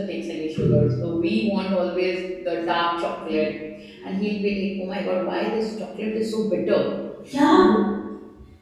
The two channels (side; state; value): both; identical; correlation 1.00